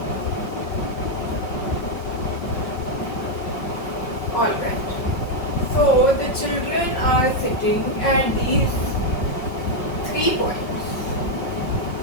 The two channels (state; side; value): late; right; 5.3 ms